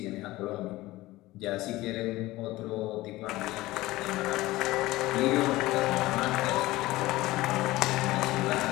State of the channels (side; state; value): right; quieter; 18.4 dB